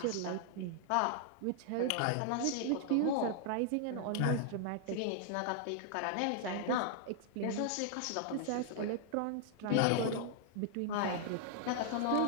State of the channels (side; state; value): both; different; correlation 0.00